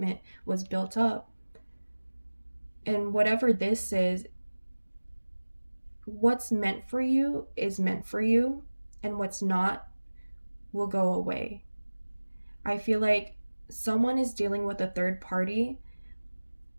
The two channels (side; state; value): both; inverted; correlation -1.00